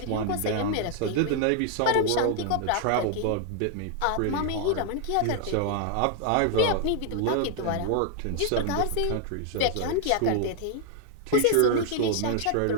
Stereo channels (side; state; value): both; different; correlation 0.00